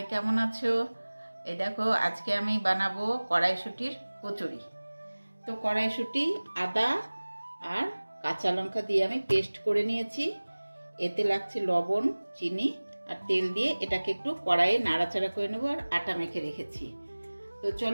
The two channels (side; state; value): both; inverted; correlation -1.00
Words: কেমন আছো? এই দেখো, আজকে আমি বানাবো কড়াইশুঁটির কচুরি। তো কড়াইশুঁটি, আদা আর কাঁচা লঙ্কা দিয়ে আমি পেস্ট করে নিয়েছি। এতে লাগছে লবণ, চিনি আর তেল দিয়ে এটাকে একটু কড়াইয়ে নাড়াচাড়া করে নেবো আর আটা মেখে রেখেছি। তো